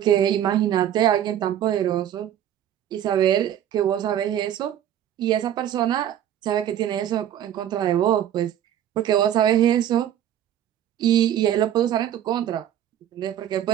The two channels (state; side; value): quieter; left; 10.9 dB